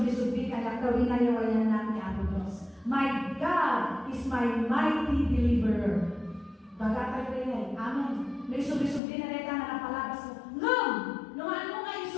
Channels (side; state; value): right; drops out; at 9.0 s